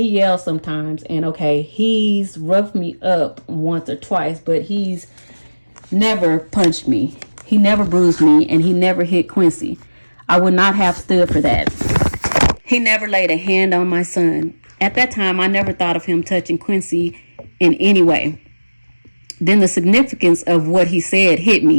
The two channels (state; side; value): inverted; both; correlation -1.00